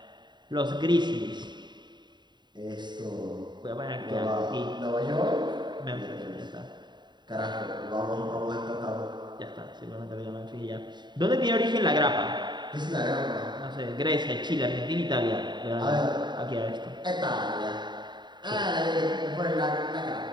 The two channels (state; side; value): late; left; 0.21 ms